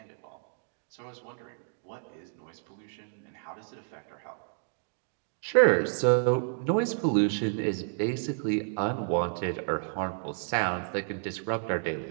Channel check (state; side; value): silent; left; digital silence